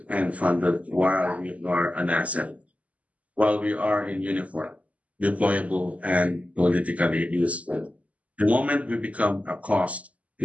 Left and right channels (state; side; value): late; left; 0.069 ms